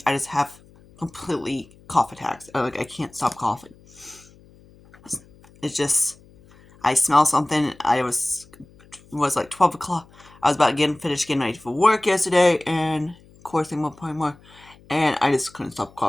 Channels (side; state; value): left; noise; hum, 26 dB below the sound